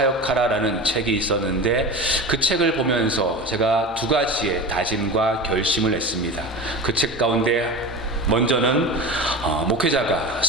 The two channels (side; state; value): both; normal; correlation 0.29